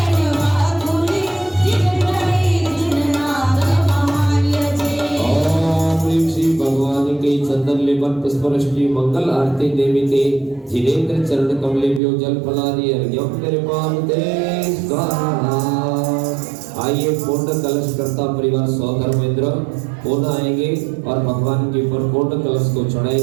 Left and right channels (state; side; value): drops out; left; at 12.0 s